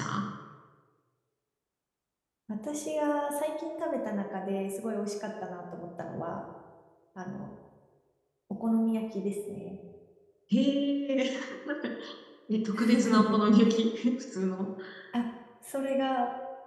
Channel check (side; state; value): both; identical; correlation 1.00